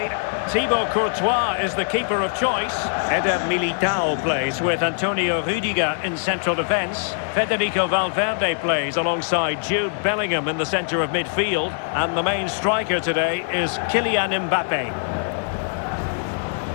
Thibaut Courtois is the keeper of choice. Eder Militao plays with Antonio Rudiger in central defence. Federico Valverde plays alongside Jude Bellingham in the centre of midfield. And the main striker today is Kylian Mbappe.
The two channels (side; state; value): right; silent; 64 dB below the other